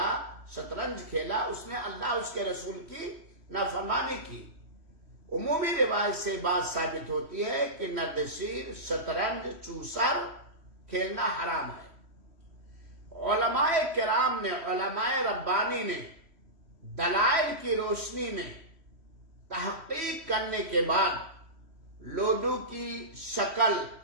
شطرنج کھیلا، اس نے اللہ اس کے رسول کی نافرمانی کی. عمومی روایت سے بات ثابت ہوتی ہے کہ نرد شیر، شطرنج، چوسر کھیلنا حرام ہے. علماء کرام نے، علماء ربانی نے دلائل کی روشنی میں تحقیق کرنے کے بعد لوڈو کی شکل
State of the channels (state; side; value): late; left; 3.1 ms